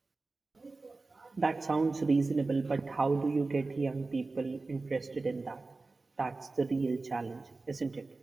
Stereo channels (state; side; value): quieter; left; 3.6 dB